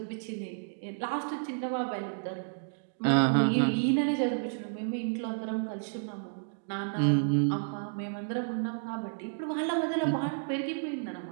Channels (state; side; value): silent; left; digital silence